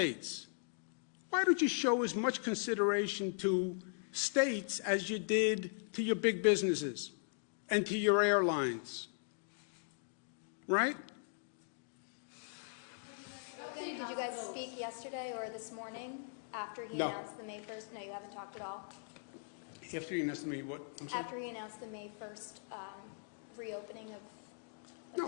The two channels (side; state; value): right; silent; digital silence